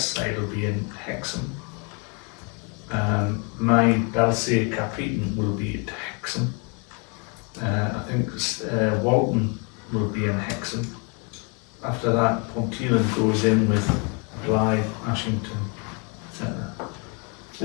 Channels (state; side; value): quieter; right; 34.6 dB